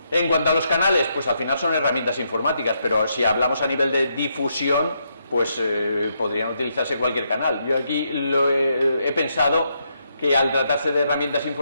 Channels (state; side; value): inverted; both; correlation -0.78